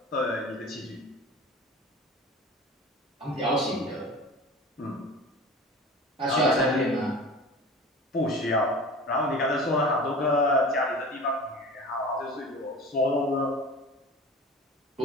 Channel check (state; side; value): normal; both; correlation 0.37